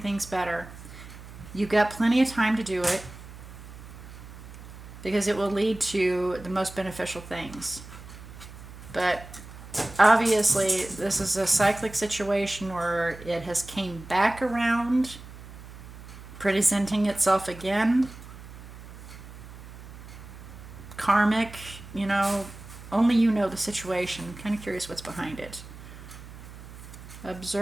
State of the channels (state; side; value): noise; right; hum, 15 dB below the sound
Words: better. You've got plenty of time to do it because it will lead to the most beneficial things. But obviously this is a cyclic situation where it has came back around, presenting itself again. Karmic, only you know the situation. I'm kind of curious what's behind it.